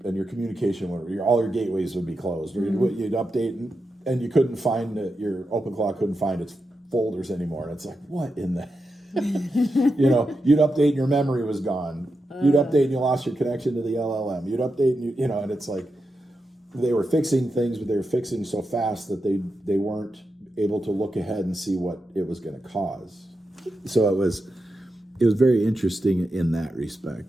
and your communication would, all your gateways would be closed, or you'd update and you couldn't find it. Your OpenClaw couldn't find its folders anymore, and it's like, what in the you'd update and your memory was gone. You'd update and you lost your connection to the LLM. You'd update and and it's like they were fixing things, but they were fixing so fast that they weren't able to look ahead and see what it was going to cause. So it was very interesting in that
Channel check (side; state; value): both; normal; correlation 0.88